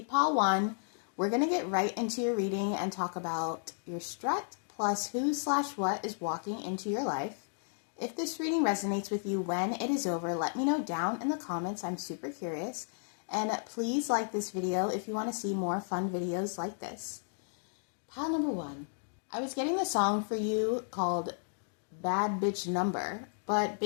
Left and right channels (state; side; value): silent; right; digital silence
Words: pile 1, we're going to get right into your reading and talk about your strut plus who/what is walking into your life. If this reading resonates with you when it is over, let me know down in the comments. I'm super curious. And please like this video if you want to see more fun videos like this. Pile number 1. I was getting the song for you called Bad Bitch Number, but